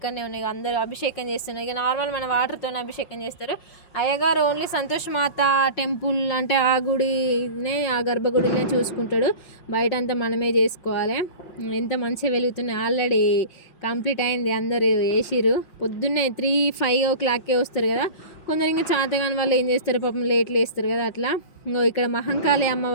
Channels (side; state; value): right; late; 5.6 ms